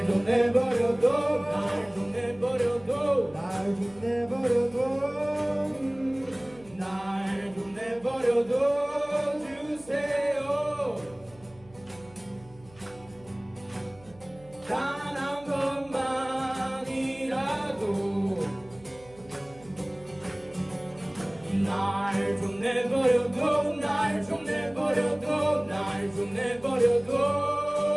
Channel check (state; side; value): noise; right; hum, 24 dB below the sound